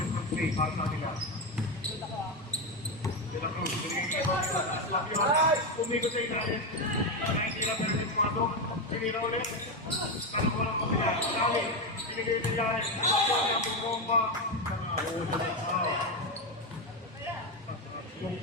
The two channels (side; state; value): both; normal; correlation 0.10